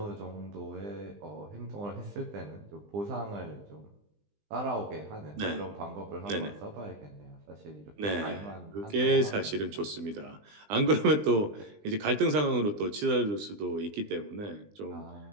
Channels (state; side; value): late; left; 20 ms